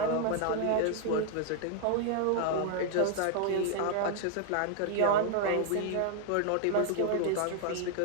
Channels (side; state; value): both; different; correlation 0.00